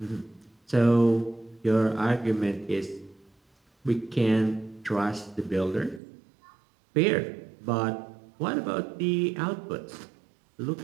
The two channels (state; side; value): drops out; left; at 6.0 s